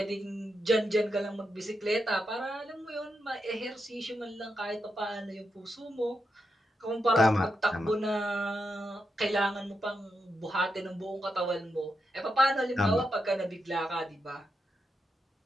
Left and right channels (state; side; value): normal; both; correlation 0.85